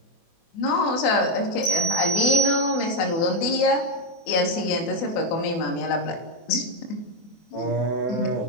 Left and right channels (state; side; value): late; right; 24 ms